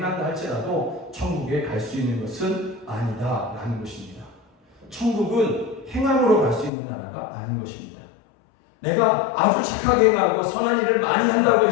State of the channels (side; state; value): right; drops out; at 6.7 s